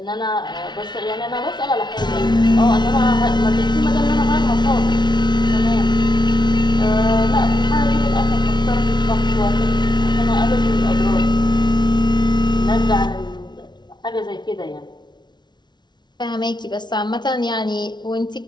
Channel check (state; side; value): late; right; 0.21 ms